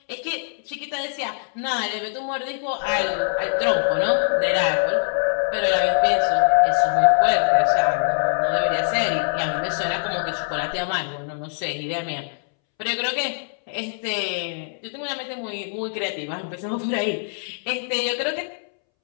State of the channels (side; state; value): right; silent; 63 dB below the other